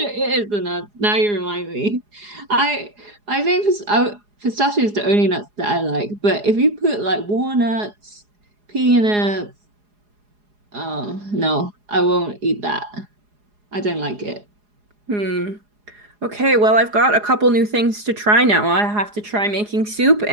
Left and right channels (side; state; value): left; late; 4.8 ms